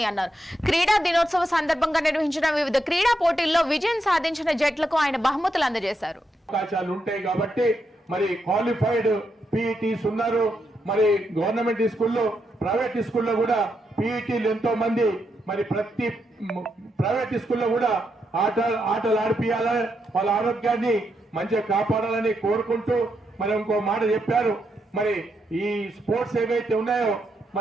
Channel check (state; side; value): normal; both; correlation 0.82